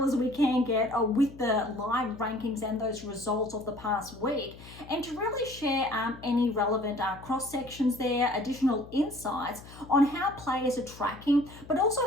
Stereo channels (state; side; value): noise; left; hum, 18 dB below the sound